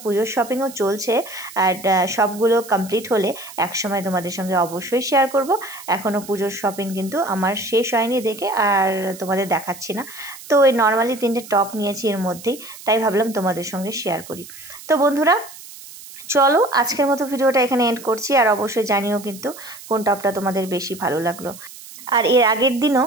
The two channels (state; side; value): noise; right; hiss, 17 dB below the sound